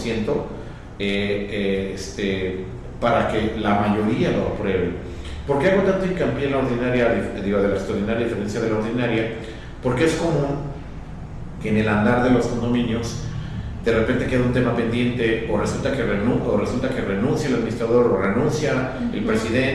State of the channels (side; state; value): both; identical; correlation 1.00